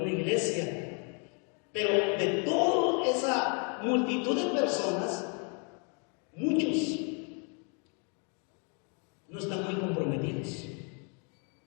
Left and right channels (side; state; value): right; quieter; 37.4 dB